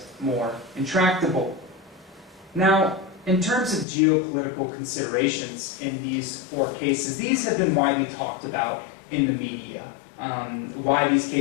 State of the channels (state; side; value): drops out; right; at 3.9 s